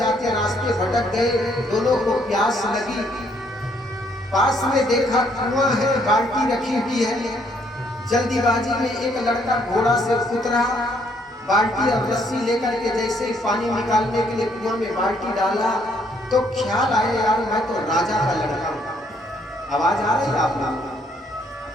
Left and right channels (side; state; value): both; normal; correlation 0.68